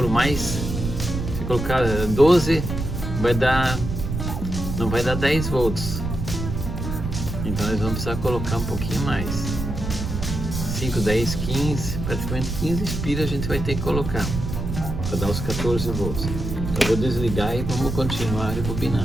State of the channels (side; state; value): right; noise; rumble, 4 dB below the sound